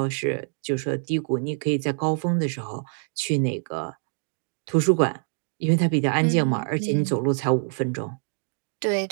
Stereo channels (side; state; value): left; silent; 62 dB below the other